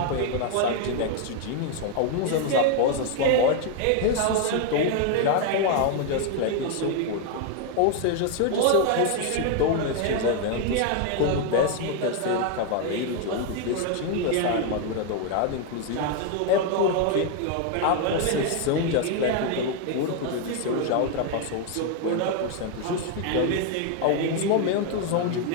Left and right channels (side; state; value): both; different; correlation 0.00